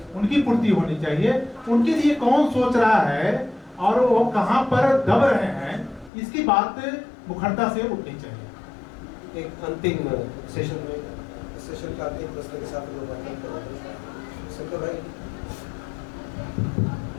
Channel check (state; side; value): drops out; right; at 6.1 s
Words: उनकी पूर्ति होनी चाहिए। उनके लिए कौन सोच रहा है और वो कहाँ पर दब रहे हैं, इसकी बात मुखरता से उठनी चाहिए। एक अंतिम सेशन का अंतिम प्रश्न के साथ शंकर भाई,